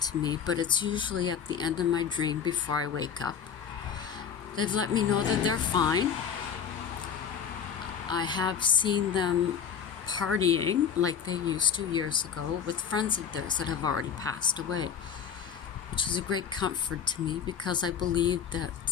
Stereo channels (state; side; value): quieter; right; 7.6 dB